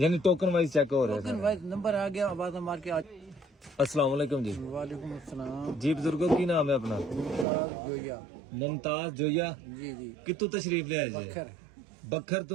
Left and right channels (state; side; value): drops out; left; at 7.5 s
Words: टोकन वाइज चेक हो रहा है टोकन वाइज नंबर आ गया आवाज मार के आज अस्सलाम वालेकुम जी। वालेकुम अस्सलाम जी बुजुर्गो की नाम है अपना? मुमताज जोया। मुमताज जोया। जी जी कितों तशरीफ ले आए जी? बखर बखर